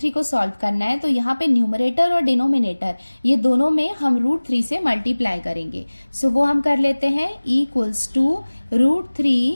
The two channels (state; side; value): inverted; both; correlation -1.00